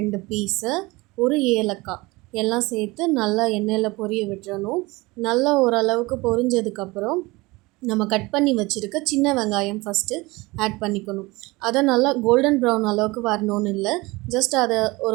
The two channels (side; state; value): left; quieter; 22.6 dB